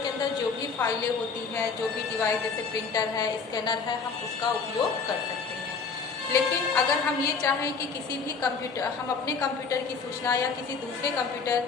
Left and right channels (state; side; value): quieter; right; 5.2 dB